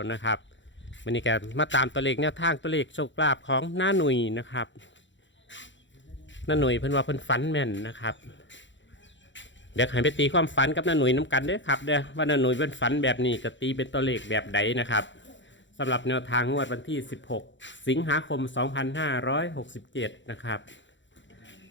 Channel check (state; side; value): late; right; 0.54 ms